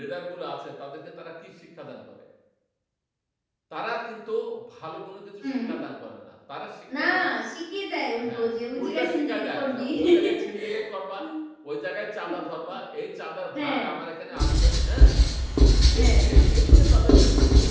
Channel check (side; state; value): both; identical; correlation 1.00